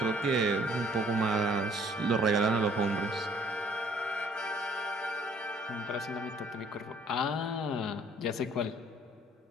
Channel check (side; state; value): both; normal; correlation 0.59